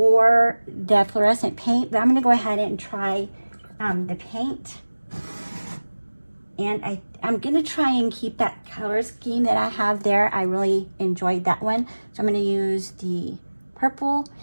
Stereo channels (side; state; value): both; inverted; correlation -1.00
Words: the fluorescent paint, but I'm gonna go ahead and try the paint. And I'm gonna try and keep that color scheme that I have there. I really enjoyed that one. So I'm gonna use the purple.